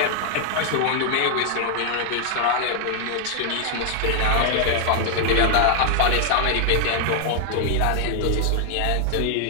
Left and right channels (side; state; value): both; different; correlation 0.00